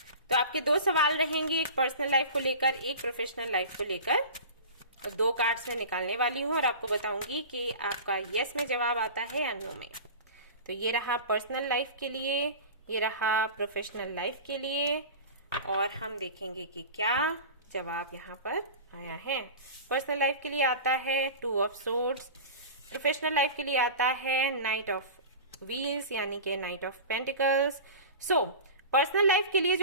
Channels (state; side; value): inverted; both; correlation -0.34